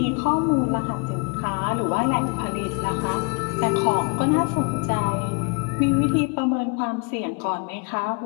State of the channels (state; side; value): quieter; right; 34.6 dB